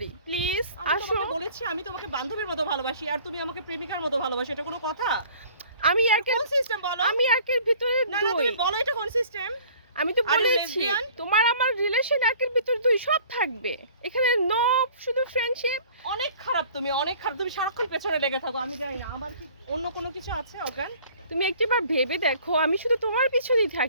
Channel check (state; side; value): inverted; both; correlation -0.51